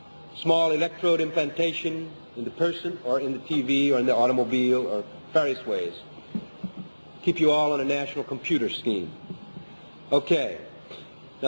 small electrode implantation in the person or in the TV or in the automobile or various ways. Keep you all on a national computer scheme. Okay.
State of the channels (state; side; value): inverted; both; correlation -1.00